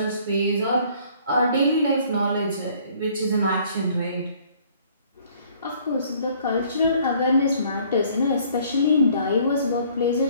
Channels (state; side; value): inverted; both; correlation -0.58